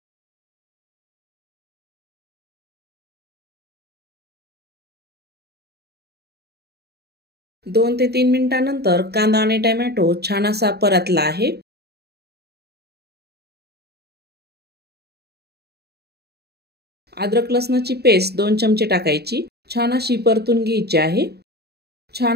दोन ते 3 मिनिटांनंतर कांदा आणि टोमॅटो छान असा परतला आहे. अद्रक लसणाची पेस्ट 2 चमचे टाकायची. छान अशी परतून घ्यायची आहे.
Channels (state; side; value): late; left; 0.47 ms